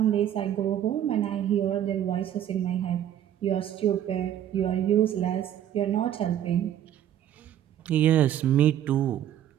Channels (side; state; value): left; quieter; 10.9 dB